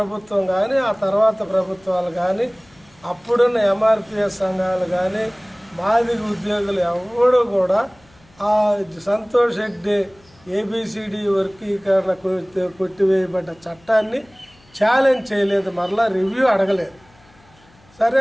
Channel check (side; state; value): left; noise; hum, 30 dB below the sound